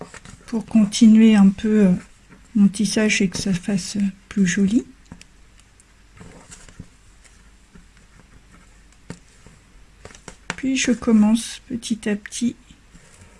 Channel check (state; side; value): identical; both; correlation 1.00